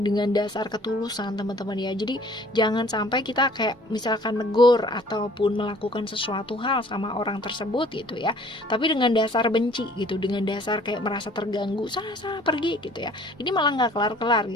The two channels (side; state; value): both; normal; correlation 0.54